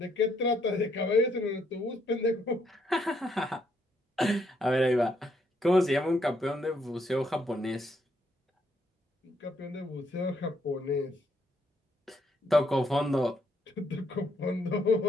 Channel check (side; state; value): both; normal; correlation 0.73